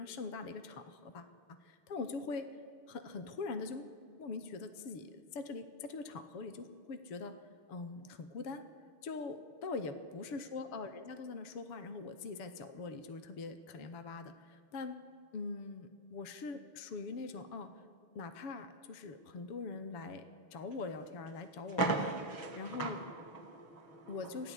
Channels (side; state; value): right; late; 7.0 ms